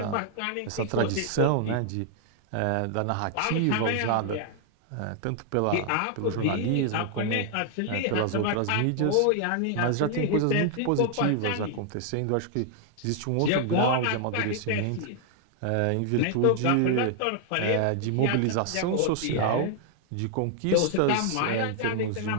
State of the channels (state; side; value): different; both; correlation 0.00